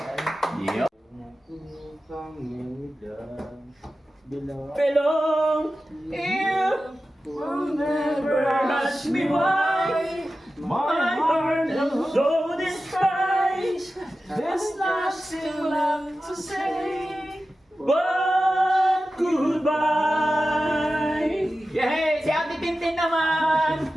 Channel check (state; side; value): normal; both; correlation 0.94